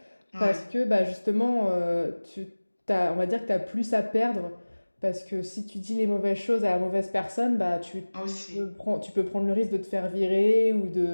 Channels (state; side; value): inverted; both; correlation -1.00